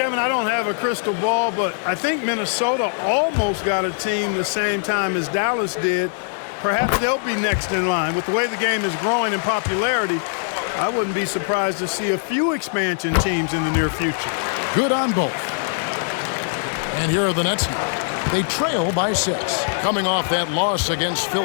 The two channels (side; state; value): right; silent; digital silence